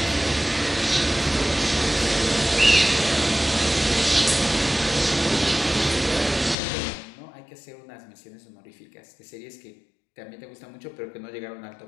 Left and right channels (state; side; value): drops out; right; at 6.6 s